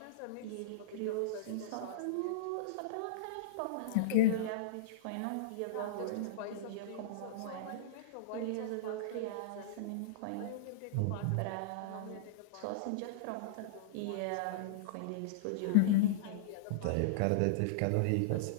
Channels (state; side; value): different; both; correlation -0.03